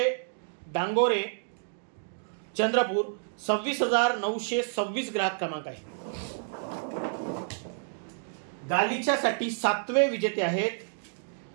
डांगोरे, चंद्रपूर. 26,926 ग्राहक क्रमांक आहे. गालिच्यासाठी सातवे विजेते आहेत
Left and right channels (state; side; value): silent; left; digital silence